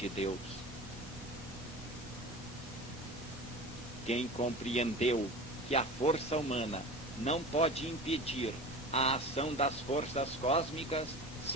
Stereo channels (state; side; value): normal; both; correlation 0.34